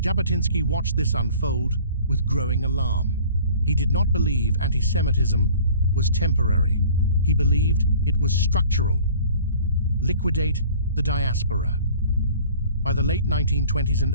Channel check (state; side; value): inverted; both; correlation -0.49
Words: watched this unfold with growing alarm. He did not believe anti-Semitism was temporary. He believed it was structural. Liquidate the diaspora. By the late 1920s and